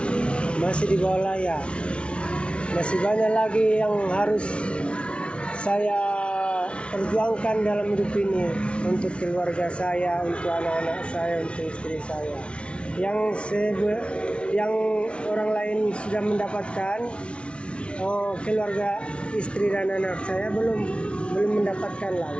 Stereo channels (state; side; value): late; right; 0.059 ms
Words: Masih di bawah layak. Masih banyak lagi yang harus saya perjuangkan dalam hidup ini untuk keluarga saya, untuk anak-anak saya, untuk istri saya. Yang orang lain sudah mendapatkan, keluarga istri dan anak saya belum mendapatkan lah